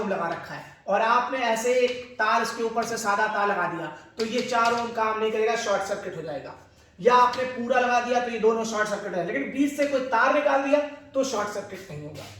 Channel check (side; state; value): both; identical; correlation 1.00